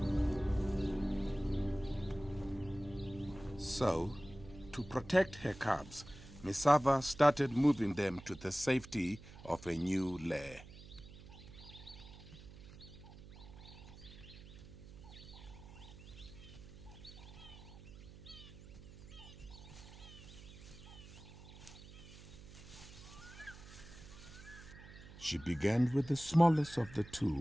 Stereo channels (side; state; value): right; noise; hum, 16 dB below the sound